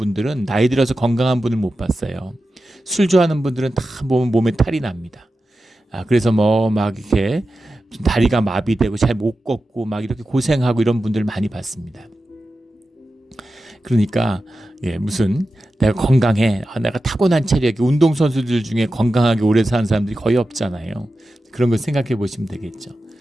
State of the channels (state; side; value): normal; both; correlation 0.92